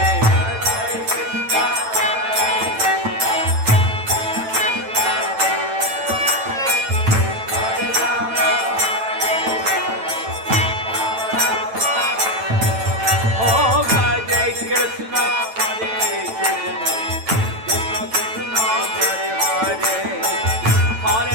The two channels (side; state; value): left; late; 9.0 ms